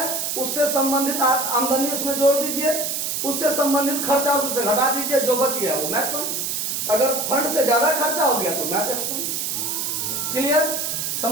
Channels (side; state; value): right; noise; hiss, 1 dB below the sound